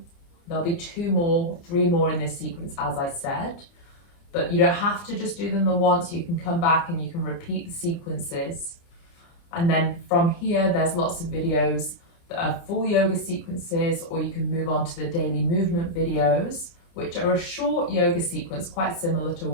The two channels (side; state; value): right; late; 29 ms